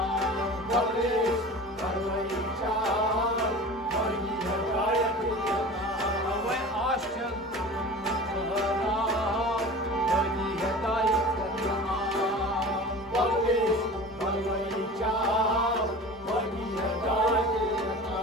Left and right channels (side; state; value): both; normal; correlation 0.37